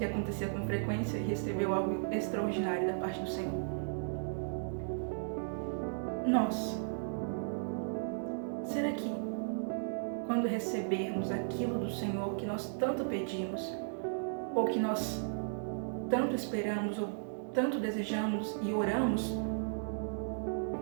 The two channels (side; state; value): left; silent; digital silence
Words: acontecia com frequência, e recebeu algo extraordinário da parte do Senhor. Nós, será que quando recebermos aquilo do Senhor que nós tanto pedimos, ou que nós tanto esperamos, ou tanto desejamos e oramos, o